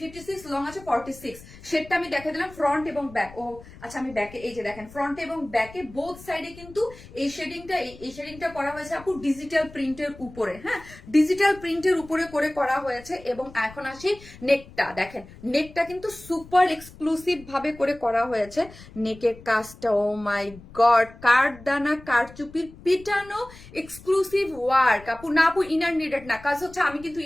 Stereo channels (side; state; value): left; noise; rumble, 19 dB below the sound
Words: লং আছে 46। শেডটা আমি দেখে দিলাম ফ্রন্ট এবং ব্যাক। ও আচ্ছা, আমি ব্যাকে এই যে দেখেন ফ্রন্ট এবং ব্যাকে বোথ সাইডে কিন্তু এই শেডিংটা করা হয়েছে আপু ডিজিটাল প্রিন্টের উপরে, হ্যাঁ ডিজিটাল প্রিন্টের উপরে করে করা হয়েছে। এবং এখন আসি নেকটা, দেখেন নেকটা কিন্তু সুপার এক্সক্লুসিভ ভাবে করে করা হয়েছে। নেকের কাজটা ও মাই গড, কারচুপির পিটানো এক্সক্লুসিভ ওয়ার্ক আপু। না আপু ইনার নিডেড না, কাজ হচ্ছে আমি কিন্তু